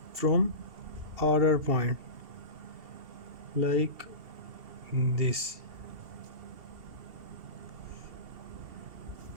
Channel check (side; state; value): left; late; 2.7 ms